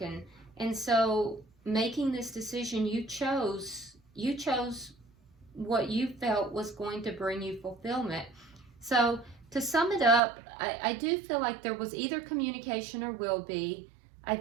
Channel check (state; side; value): drops out; left; at 10.2 s